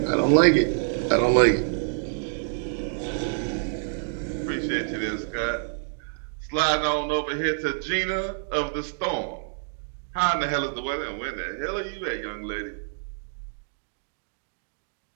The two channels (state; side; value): silent; left; digital silence